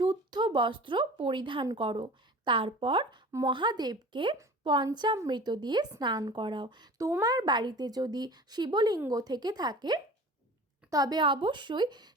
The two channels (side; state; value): both; normal; correlation 0.40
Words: বস্ত্র পরিধান করো, তারপর মহাদেবকে পঞ্চামৃত দিয়ে স্নান করাও। তোমার বাড়িতে যদি শিবলিঙ্গ থেকে থাকে তবে অবশ্যই